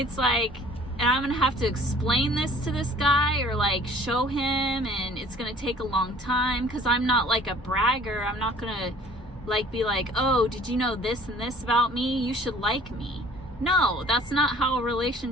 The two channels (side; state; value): both; normal; correlation 0.52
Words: like, and I'm gonna have to explain this to this guy or like show him, and it's gonna take a long time because I'm not like a bragger. I'm not gonna like be like, oh, did you know this and this about me? You should like me. No, that's not how